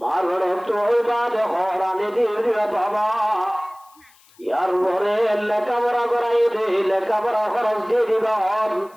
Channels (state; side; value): noise; left; hiss, 29 dB below the sound